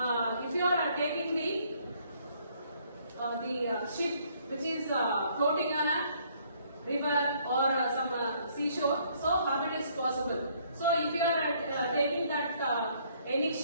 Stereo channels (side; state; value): both; inverted; correlation -0.64